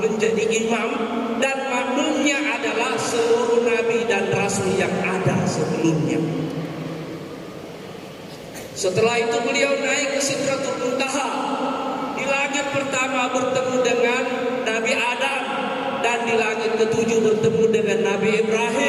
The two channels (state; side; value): identical; both; correlation 1.00